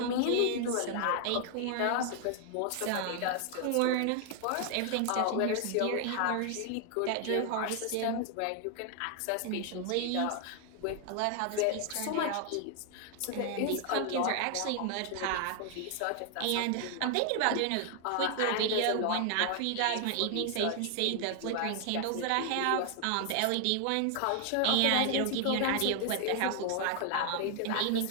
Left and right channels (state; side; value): different; both; correlation 0.00